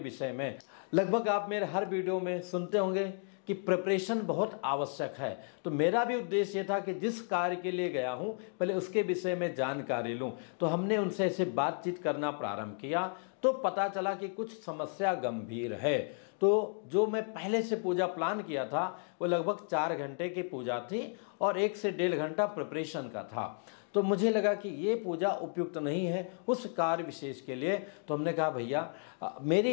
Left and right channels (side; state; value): right; silent; 55 dB below the other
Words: में। लगभग आप मेरे हर वीडियो में सुनते होंगे कि प्रिपरेशन बहुत आवश्यक है। तो मेरा भी उद्देश्य था कि जिस कार्य के लिए गया हूं पहले उसके विषय में जानकारी लूं। तो हमने उनसे ऐसे बातचीत करना प्रारंभ किया तो पता चला कि कुछ समस्या गंभीर है। तो जो मैं पहले से पूजा प्लान किया था वो लगभग 4 घंटे की पूजा थी और 1 से 1.5 घंटा प्रिपरेशन का था। तो मुझे लगा कि ये पूजा उपयुक्त नहीं है उस कार्य विशेष के लिए। तो हमने कहा भैया मेरी